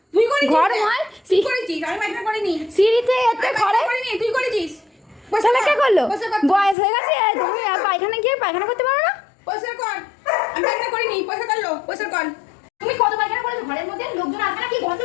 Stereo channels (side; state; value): right; drops out; at 6.8 s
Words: তুই করেছিস? ঘর নয়, তুই করেছিস? আমি পায়খানা করিনি। সিঁড়িতে এতে ঘরে করিনি, তুই করেছিস। তাহলে কে করলো? বয়স হয়ে গেছে, তুমি আর পায়খানা গিয়ে পায়খানা করতে পারো না? পয়সা কর। আমি পায়খানা করিনি, পয়সা করলো, পয়সা কর। তুমি কত পায়খানা করেছো? ঘরের মধ্যে লোকজন আসবে না কি? গন্ধ